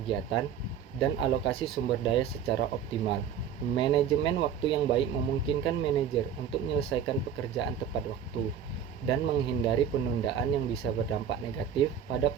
dan alokasi sumber daya secara optimal. Manajemen waktu yang baik memungkinkan manajer untuk menyelesaikan pekerjaan tepat waktu dan menghindari penundaan yang bisa berdampak negatif pada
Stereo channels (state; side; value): quieter; left; 8.2 dB